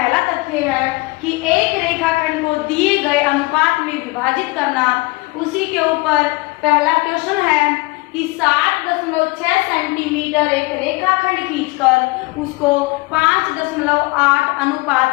तथ्य है कि एक रेखाखंड को दिए गए अनुपात में विभाजित करना। उसी के ऊपर पहला क्वेश्चन है कि 7.6 सेंटीमीटर एक रेखाखंड खींचकर उसको 5.8 अनुपात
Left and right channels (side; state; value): right; quieter; 24.2 dB